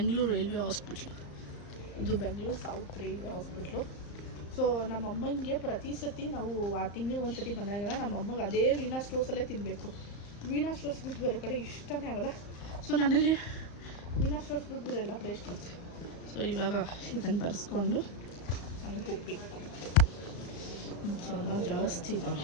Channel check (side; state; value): right; late; 35 ms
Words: railway hospital. ಇದು Bengaluru south railway hospital. So ನಮ್ಮಮ್ಮನಿಗೆ ಪ್ರತಿ ಸತಿ ನಾವು ಆ ತಿಂಗಳು ಒಂದು ಸತಿ ಬಂದಾಗೆಲ್ಲ ನಮ್ಮಮ್ಮಗೆ ಅದೇ ವೀಣಾ ಸ್ಟೋರ್ಸಲ್ಲೇ ತಿನ್ನಬೇಕು. ವೀಣಾ ಸ್ಟೋರ್ಸ್ ಬಿಟ್ಟು ಬೇರೆ ಕಡೆ ಇಷ್ಟನೇ ಆಗಲ್ಲ. ಸೊ ನನಗೆ ವೀಣಾ ಸ್ಟೋರ್ಸ್ ಬಿಟ್ಟು ಬೇರೆ ಎಲ್ಲ ಕಡೆ ಇಷ್ಟ ಆಗ್ತದೆ. ಸೊ ಇವಾಗ ಇದನ್ನು ಬರೆಸ್ಕೊಂಡು ನನಗೆ ಹೋಗ್ಬೇಕು. ಜನ ಜಾಸ್ತಿ